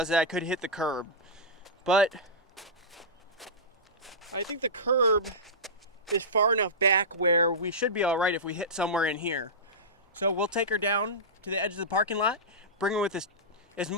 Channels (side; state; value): both; normal; correlation -0.14